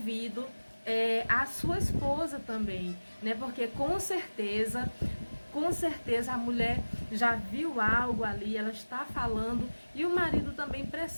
à sua esposa também, né? Porque com certeza a mulher já viu algo ali, ela está falando, e o marido também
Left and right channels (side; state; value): both; inverted; correlation -1.00